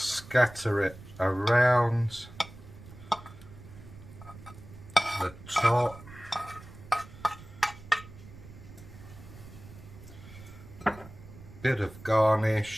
it around the top. Bit of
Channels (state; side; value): noise; right; rumble, 17 dB below the sound